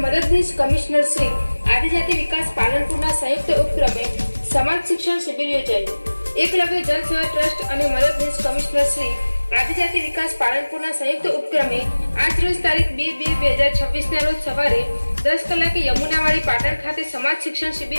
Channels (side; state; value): both; inverted; correlation -1.00